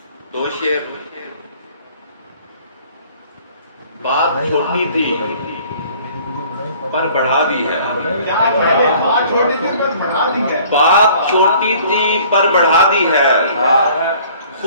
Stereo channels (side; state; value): both; inverted; correlation -0.54